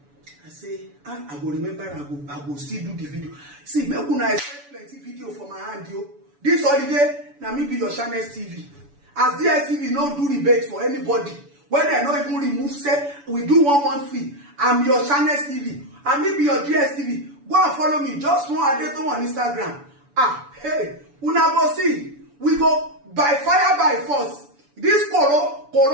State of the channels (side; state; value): left; late; 7.0 ms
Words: I say, I go remember. I go still do the video. See, make una expect plenty video for my hand, yo. This holiday, na me be your channel TV. As DSTV no do rebate for anybody. When they not even remove, say we do 1 month free. I'm your channel TV. And me be your DSTV. Go and follow me. Just one adeto on Instagram. Hey, una go see. We go by fire by force. This